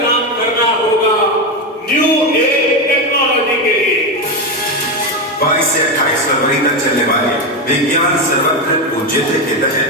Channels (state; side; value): normal; both; correlation 0.12